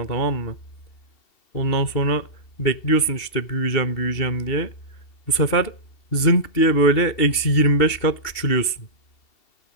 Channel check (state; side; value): late; right; 2.7 ms